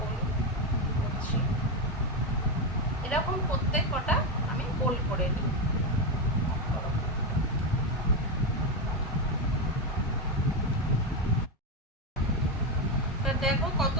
করছি। এরকম প্রত্যেক কটা আমি গোল করে নিই। দেখো কত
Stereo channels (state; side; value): normal; both; correlation 0.10